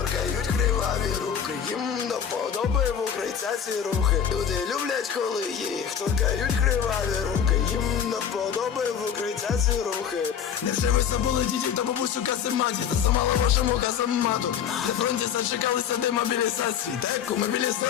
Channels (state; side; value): quieter; right; 8.2 dB